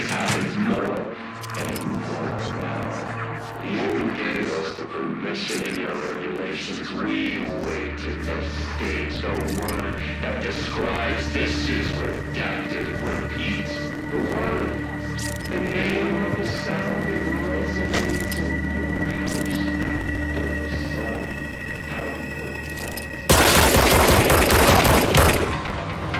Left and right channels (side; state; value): both; identical; correlation 1.00